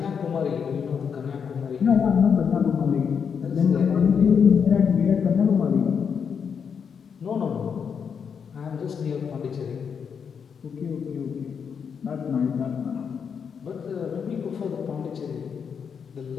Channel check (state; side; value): quieter; right; 6.7 dB